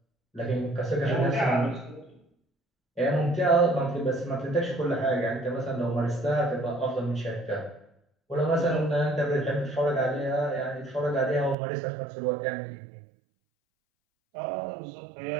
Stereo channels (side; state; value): left; drops out; at 11.6 s